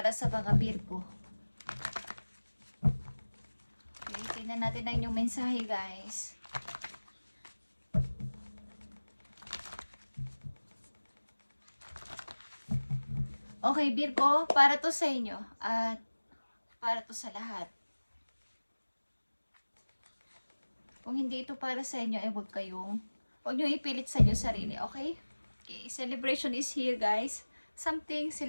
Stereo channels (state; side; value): inverted; both; correlation -1.00